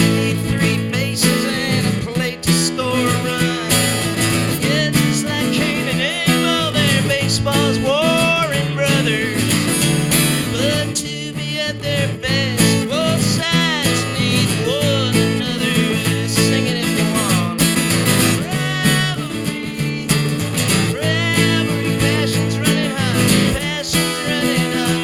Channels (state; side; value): identical; both; correlation 1.00